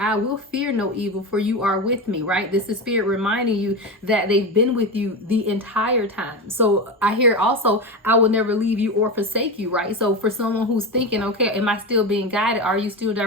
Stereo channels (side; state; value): both; normal; correlation 0.20